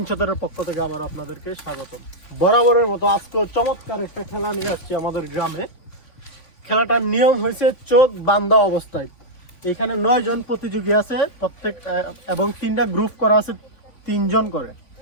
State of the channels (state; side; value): late; right; 3.5 ms